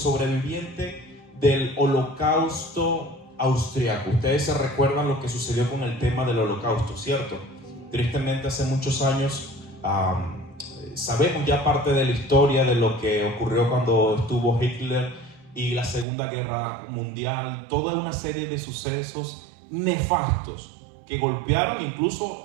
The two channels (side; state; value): left; drops out; at 16.1 s